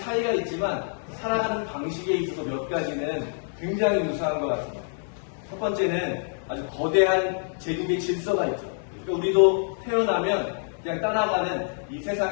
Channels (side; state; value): right; silent; 61 dB below the other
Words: 있지만 살아가는 방식에 있어서 몇 가지는 굉장히 유사한 것 같습니다. 첫 번째는 아주 거대한 제국의 질서가 있죠. 그러니까 우리도 태어나면 그냥 따라가는 이